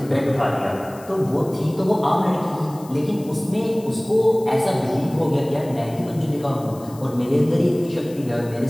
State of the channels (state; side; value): noise; left; hiss, 22 dB below the sound